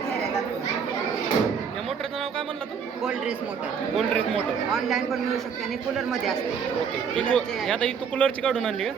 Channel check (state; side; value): quieter; left; 6.7 dB